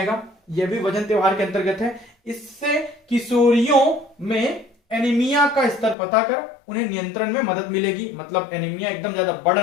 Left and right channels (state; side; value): drops out; right; at 6.0 s